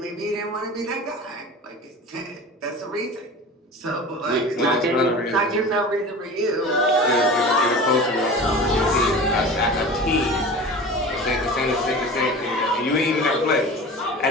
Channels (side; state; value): both; normal; correlation 0.36